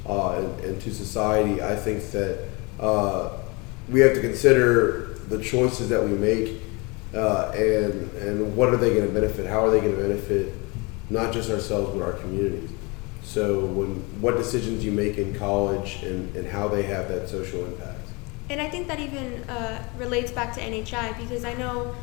And to society. I think that we have to consider the choices that we make and what are they going to benefit, how are they going to benefit not just ourselves but our communities. So what decisions you make in college and how they have that social impact. And I think that even relates back to NHI because I know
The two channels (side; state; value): right; quieter; 27.8 dB